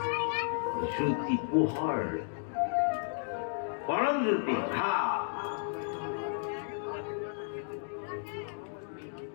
জ্যোতি পোহৰ, পৰম জ্যোতি ভা।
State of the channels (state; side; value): silent; right; digital silence